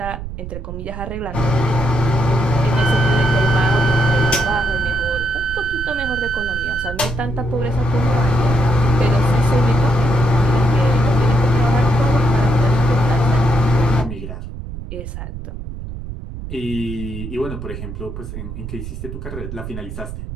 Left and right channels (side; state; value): right; noise; rumble, 9 dB below the sound